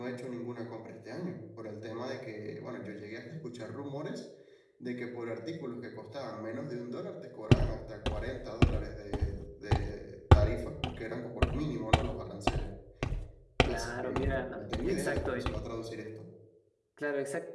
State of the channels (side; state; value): both; identical; correlation 1.00